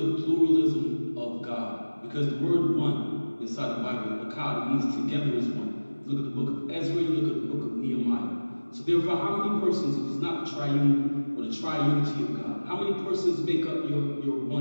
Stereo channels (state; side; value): inverted; both; correlation -1.00